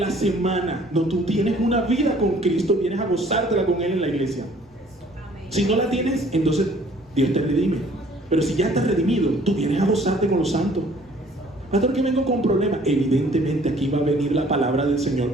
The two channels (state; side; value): normal; both; correlation 0.56